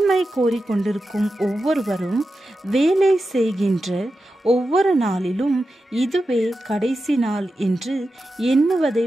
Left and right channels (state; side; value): normal; both; correlation 0.91